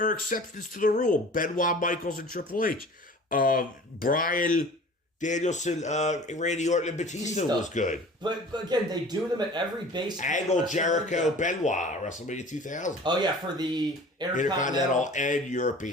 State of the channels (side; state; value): both; normal; correlation 0.43